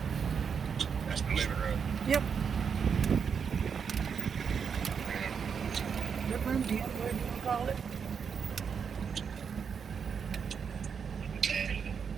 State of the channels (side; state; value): left; quieter; 6.6 dB